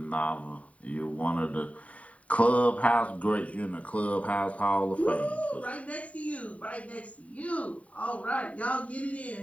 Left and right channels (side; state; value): right; late; 0.067 ms